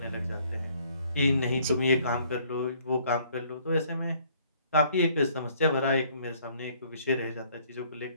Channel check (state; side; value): inverted; both; correlation -0.61